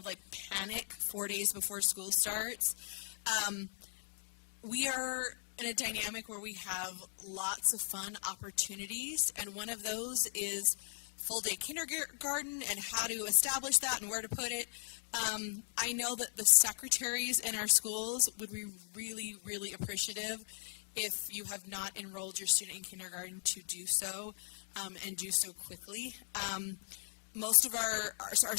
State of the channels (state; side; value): silent; right; digital silence